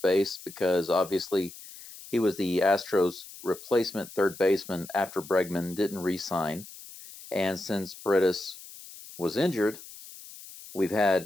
base because obviously he was the Astros' replacement third baseman after Bregman didn't re-sign. And since Paredes was injured, we've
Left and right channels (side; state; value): left; noise; hiss, 16 dB below the sound